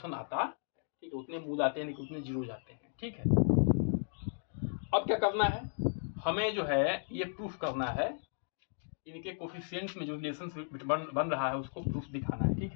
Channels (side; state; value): right; silent; digital silence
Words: आता है। ठीक है, उतने मूल आते हैं, उतने जीरो जाते हैं। ठीक है, अब क्या करना है, हमें जो है ये प्रूफ करना है, इनके कोफिशिएंट्स में जो रिलेशन बन रहा है उसको प्रूफ दिखाना है। ठीक